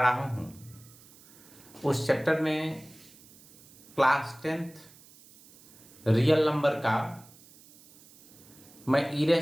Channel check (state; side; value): noise; right; hiss, 24 dB below the sound